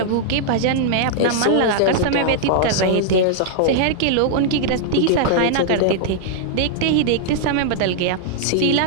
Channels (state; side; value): different; both; correlation -0.02